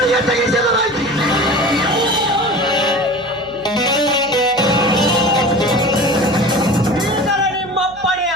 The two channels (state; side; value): noise; right; hum, 23 dB below the sound